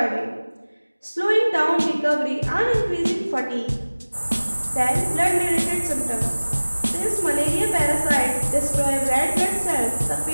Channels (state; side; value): inverted; both; correlation -1.00